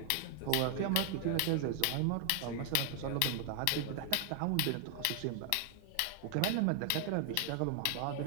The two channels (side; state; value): both; different; correlation 0.00